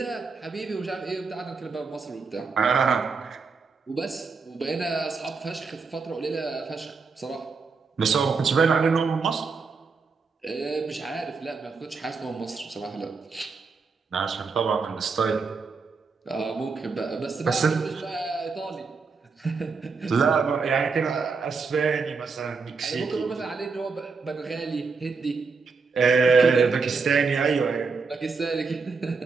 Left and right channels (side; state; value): left; quieter; 4.8 dB